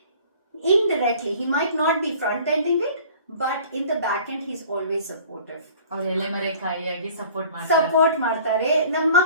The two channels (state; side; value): inverted; both; correlation -0.49